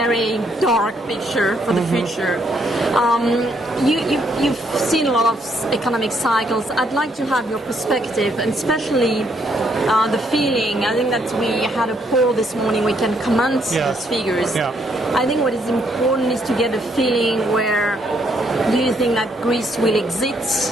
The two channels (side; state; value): both; normal; correlation 0.72